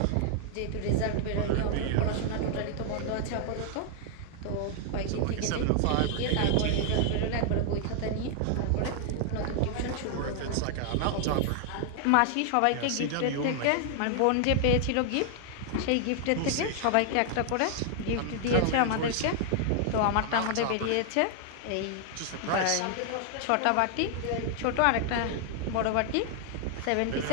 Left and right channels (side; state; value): both; different; correlation 0.00